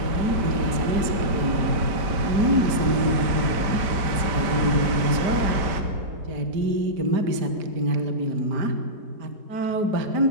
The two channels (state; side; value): late; left; 5.1 ms